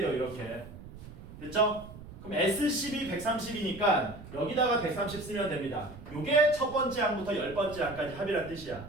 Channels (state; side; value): noise; right; rumble, 15 dB below the sound